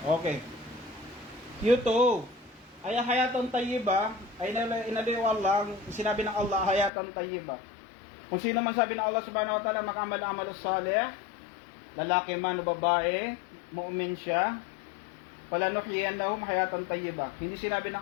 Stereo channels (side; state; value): right; drops out; at 6.9 s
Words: Okay. Q2. Ay hayatan tayyiba, ay inaliwal lang, sinabi ng Allah, hayatan tayyiba. Kung sino man sabi ng Allah subhanahu wa ta'ala, makamal-amal salih, lalaki man o babae, mu'min siya, palanuhiyannahum hayatan tayyiba. Hindi sinabi